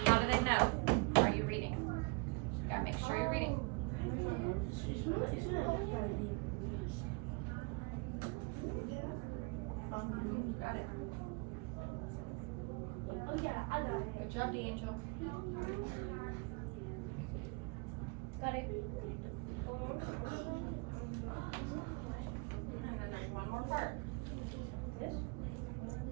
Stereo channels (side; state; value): left; quieter; 29.1 dB